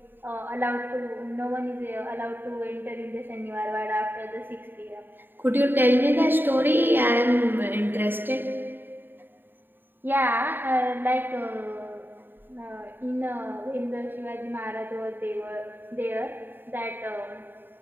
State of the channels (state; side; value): late; left; 0.095 ms